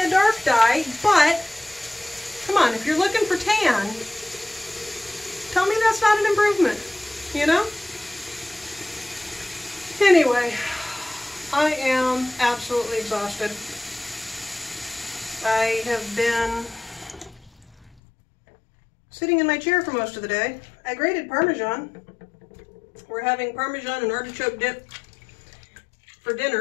dark dye, but come on, if you're looking for tan, tell me that's not an improvement, you know? Anyway, I am absolutely exhausted. I have been sitting in my chair for most of the day. I grated Parmesan. We're having Parmesan and artichoke dip for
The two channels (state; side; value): drops out; right; at 17.9 s